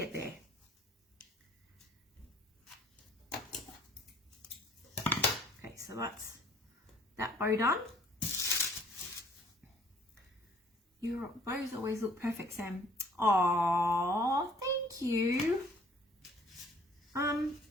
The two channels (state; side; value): normal; both; correlation 0.57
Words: there. Okay, so that's that bow done. Your bows always look perfect, Sam. Aww, thank you.